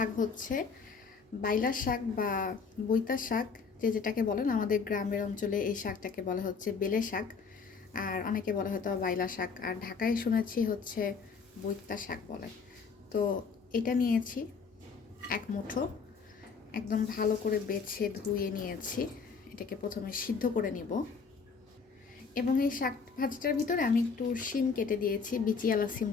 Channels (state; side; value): quieter; right; 5.3 dB